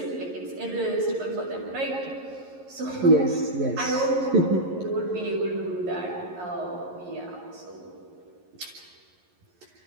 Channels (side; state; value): left; late; 11 ms